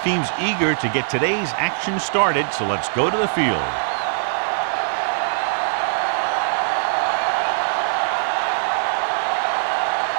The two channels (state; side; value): silent; left; digital silence